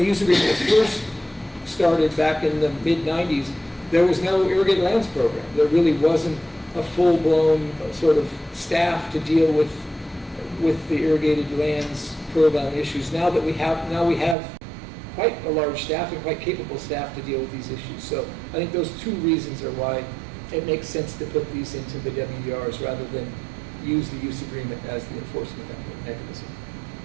use agreement was first started back in the mid-90s, there was no irrigated lands program. There really wasn't a full-blown sort of staff to deal with the irrigated lands program issues. Now we have quite a large staff and quite capable staff to deal with these issues. So I think those two reasons are why it makes sense to put these into the WDRs rather than use the use agreement as the enforcement mechanism.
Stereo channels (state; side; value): drops out; left; at 14.4 s